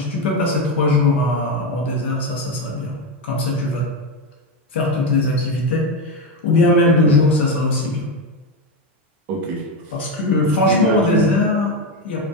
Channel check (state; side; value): normal; both; correlation 0.11